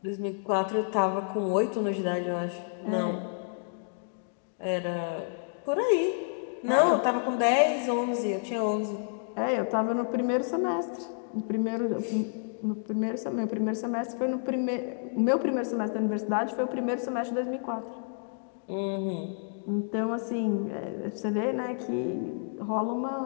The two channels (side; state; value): right; silent; digital silence